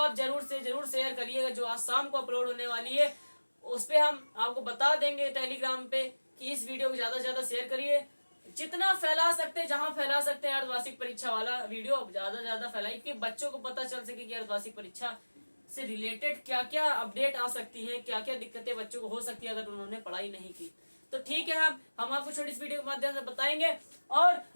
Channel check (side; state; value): both; inverted; correlation -1.00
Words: जरूर से जरूर शेयर करिएगा, जो आज शाम को अपलोड होने वाली है। उस पे हम आपको बता देंगे टेलीग्राम पे कि इस वीडियो को ज्यादा से ज्यादा शेयर करिए, जितना फैला सकते हैं, जहां फैला सकते हैं। अर्धवार्षिक परीक्षा वाला वीडियो ज्यादा से ज्यादा फैलाइए कि बच्चों को पता चल सके कि अर्धवार्षिक परीक्षा से रिलेटेड क्या क्या अपडेट आ सकती है, क्या क्या दिक्कतें बच्चों को हो सकती है अगर उन्होंने पढ़ाई नहीं की। तो ठीक है, हम आपको छोटी इस वीडियो के माध्यम से बताएंगे, और